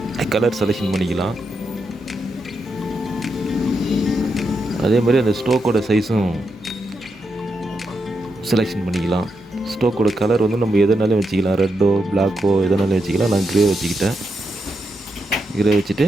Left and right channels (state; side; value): normal; both; correlation 0.84